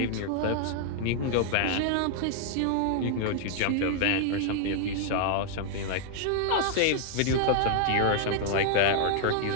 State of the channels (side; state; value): both; different; correlation 0.00